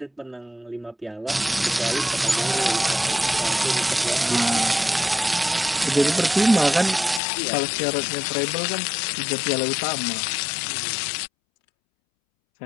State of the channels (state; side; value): drops out; right; at 7.2 s